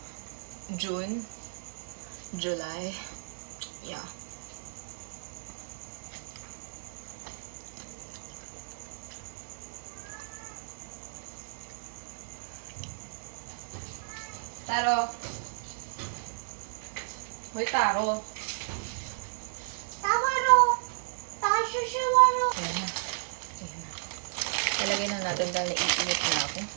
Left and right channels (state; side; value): silent; left; digital silence